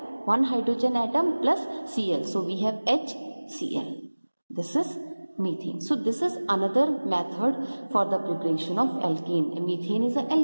One hydrogen atom plus Cl, so we have HCl. This is methane. So this is another method for the preparation of alkane. Methane is an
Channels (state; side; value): inverted; both; correlation -1.00